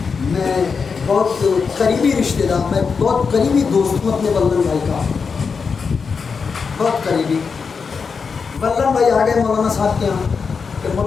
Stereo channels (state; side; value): quieter; right; 5.4 dB